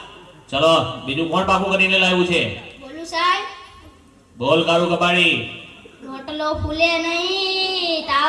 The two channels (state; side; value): identical; both; correlation 1.00